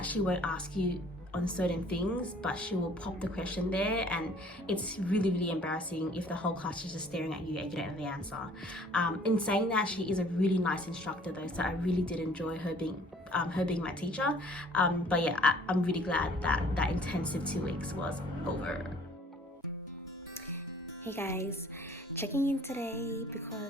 she won't ask you on certain things, but she will pop the question there, and it's really embarrassing if the whole class is just staring at you and you don't know the answer. In saying that, she is a really nice instructor though, so I really did enjoy her being my teacher. But yeah, I'm really glad that intensive 2 weeks was over. Hey guys, checking in today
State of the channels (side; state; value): both; normal; correlation 0.55